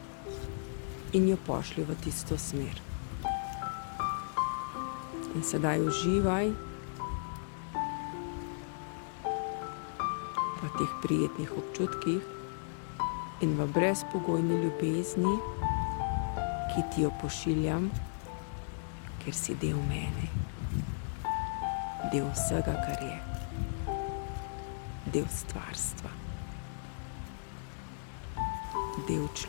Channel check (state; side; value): silent; right; digital silence